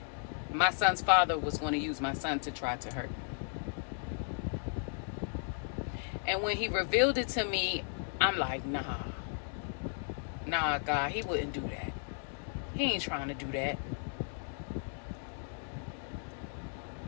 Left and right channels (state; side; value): silent; right; 54 dB below the other